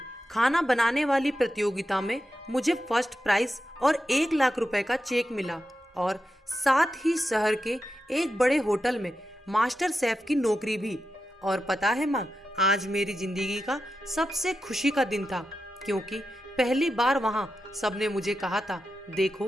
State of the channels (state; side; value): normal; both; correlation 0.89